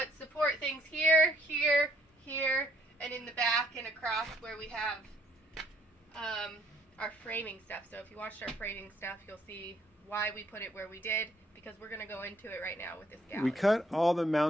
support things here, here, here, and in the back and across where we have our framing stuff. So if you watched our framing stuff, you'll see why we put it where we did, because we're going to go into it right now with this gallery. We cut all the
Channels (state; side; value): normal; both; correlation 0.66